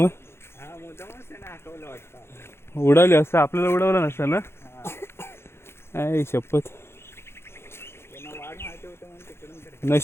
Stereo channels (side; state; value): right; late; 0.12 ms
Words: मग उडाले असतं. आपल्याला उडवलं नसतं ना. आई शपथ.